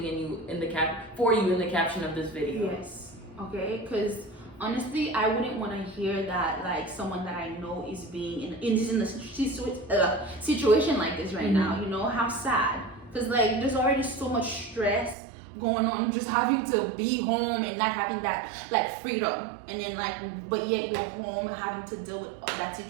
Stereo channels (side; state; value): left; drops out; at 15.2 s